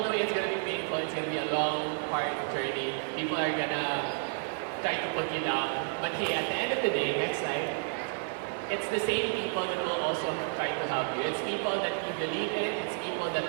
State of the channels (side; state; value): left; silent; 57 dB below the other